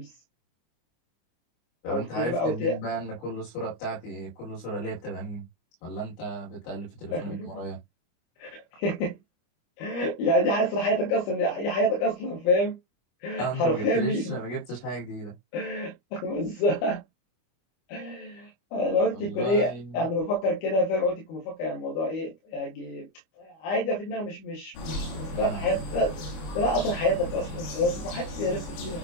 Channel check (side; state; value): right; late; 25 ms